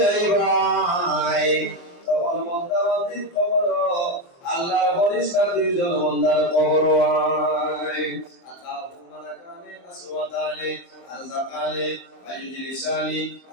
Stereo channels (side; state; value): right; late; 23 ms